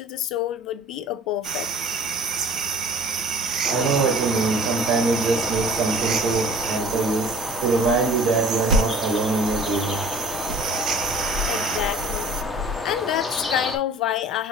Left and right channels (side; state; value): both; normal; correlation 0.48